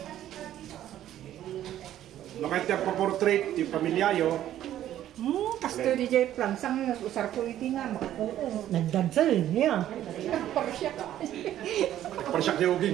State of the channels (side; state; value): left; quieter; 12.1 dB